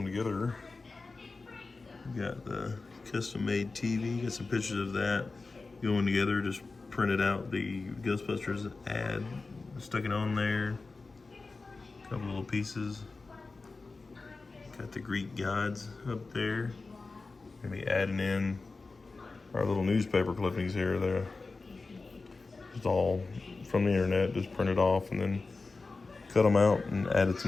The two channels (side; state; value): right; quieter; 3.8 dB